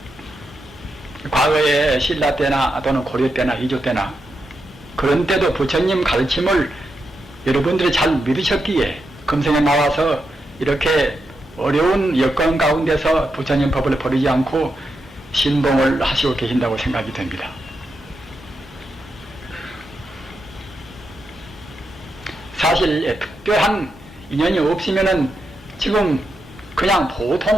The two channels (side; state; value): both; normal; correlation 0.85